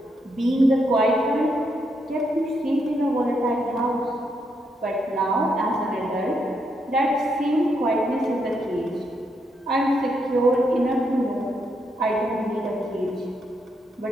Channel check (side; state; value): both; normal; correlation 0.79